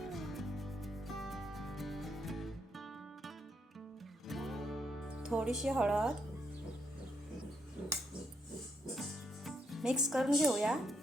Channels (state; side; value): normal; both; correlation 0.77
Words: थोडीशी हळद मिक्स करून घेऊया.